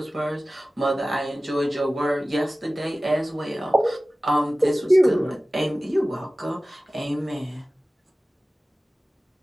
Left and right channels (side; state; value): both; normal; correlation 0.97